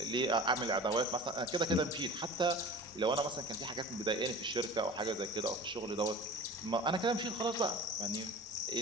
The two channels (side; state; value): both; normal; correlation 0.39